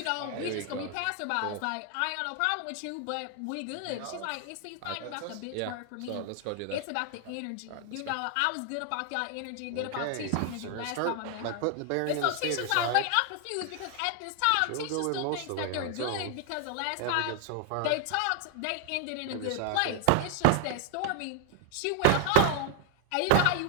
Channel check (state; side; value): different; both; correlation 0.00